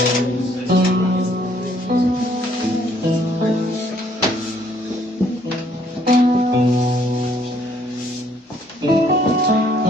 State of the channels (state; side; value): normal; both; correlation 0.65